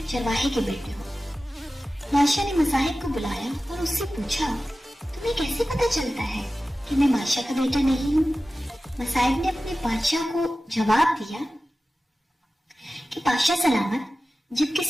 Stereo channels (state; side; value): normal; both; correlation 0.95